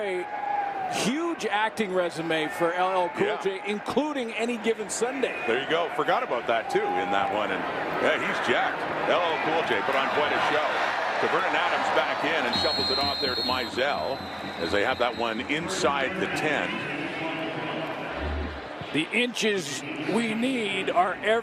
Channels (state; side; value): identical; both; correlation 1.00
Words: huge acting resume for LL Cool J, including Any Given Sunday. There you go. Forgot about that too in that one. And yeah, he's jacked. LL Cool J put on quite a show. Vernon Adams back in and shuffles it off there to Mizell as they have that one inside the 10. The inches we need are